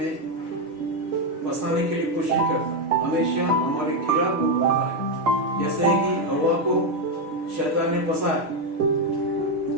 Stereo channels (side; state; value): left; late; 6.5 ms